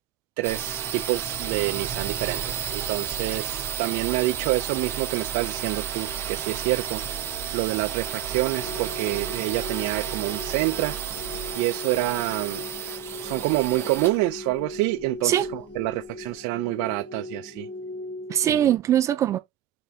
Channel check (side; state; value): left; quieter; 12.2 dB